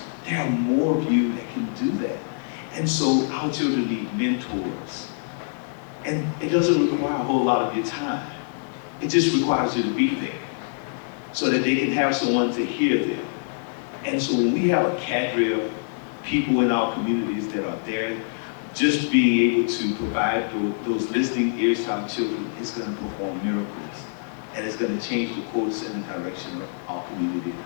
there are more of you that can do that. And so our children need mentors. And it doesn't require a whole lot of your time. It just requires you to be there so that they can have someone to hear them. And so when we have a cadre of people in our communities that are there, just being able to provide those listening ears to our children is going to perform miracles. And it's going to change the course and the direction of our community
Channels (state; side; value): silent; right; digital silence